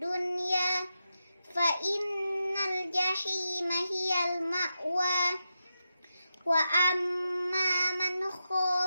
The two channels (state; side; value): inverted; both; correlation -0.88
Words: fa innal jahima hiyal ma'wa wa amma man